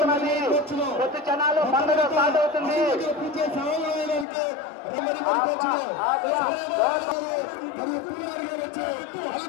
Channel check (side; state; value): right; drops out; at 4.2 s